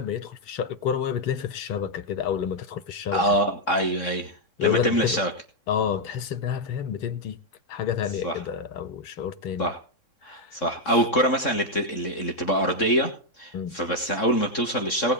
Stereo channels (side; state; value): right; late; 3.6 ms